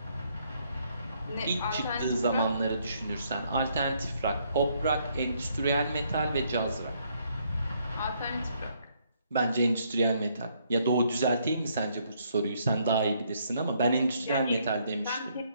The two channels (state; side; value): inverted; both; correlation -0.71